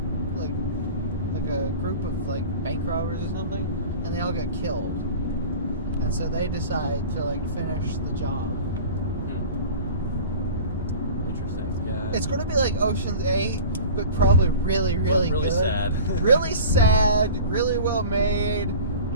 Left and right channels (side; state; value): both; inverted; correlation -0.38